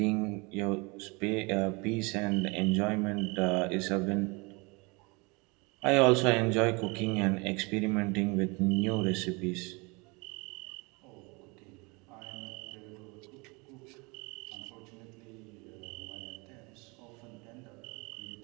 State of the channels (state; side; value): quieter; left; 28.1 dB